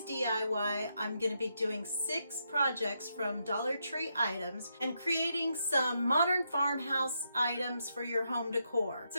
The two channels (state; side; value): inverted; both; correlation -0.81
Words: DIY, I'm going to be doing 6 projects from Dollar Tree items and creating some modern farmhouse items for your home decor.